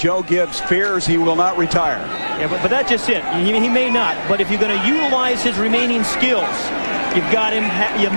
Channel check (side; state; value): both; inverted; correlation -1.00